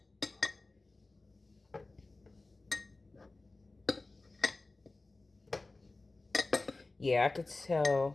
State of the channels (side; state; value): right; quieter; 3.3 dB